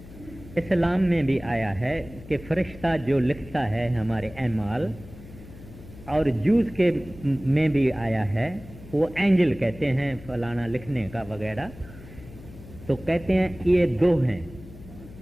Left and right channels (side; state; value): left; noise; hum, 17 dB below the sound